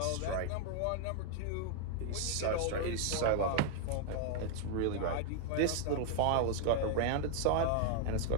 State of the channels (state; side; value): different; both; correlation 0.00